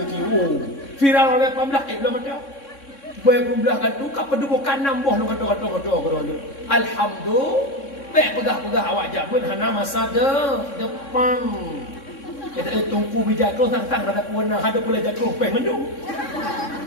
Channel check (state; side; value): late; right; 3.6 ms